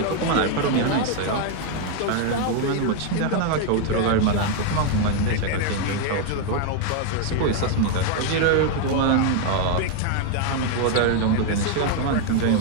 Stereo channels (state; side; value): different; both; correlation 0.00